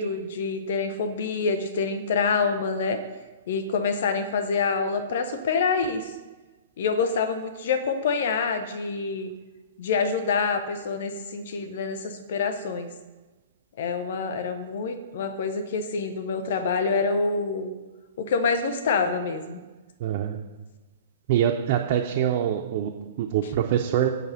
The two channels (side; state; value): both; inverted; correlation -0.40